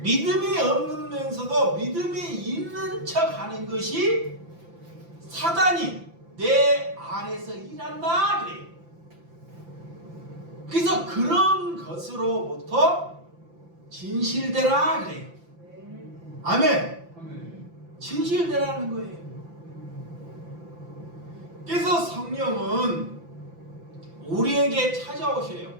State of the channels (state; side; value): late; left; 5.9 ms